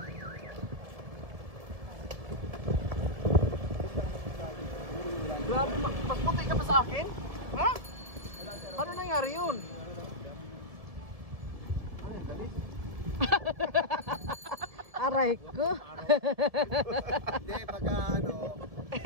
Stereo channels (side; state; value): left; late; 1.7 ms